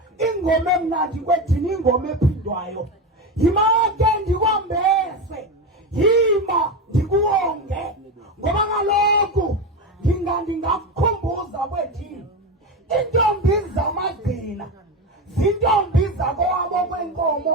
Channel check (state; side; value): normal; both; correlation 0.18